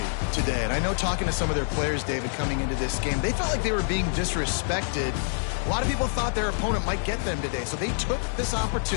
today, and I know talking to some of their players, David, coming into this game, they felt like they were being disrespected. A lot of people thought their opponent might get them today, so they took this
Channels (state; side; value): silent; right; 61 dB below the other